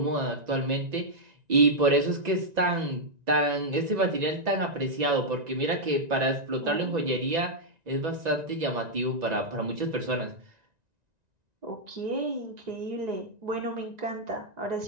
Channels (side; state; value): left; late; 1.9 ms